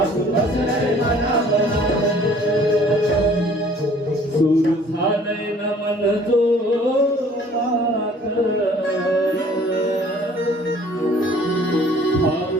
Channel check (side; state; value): both; normal; correlation 0.55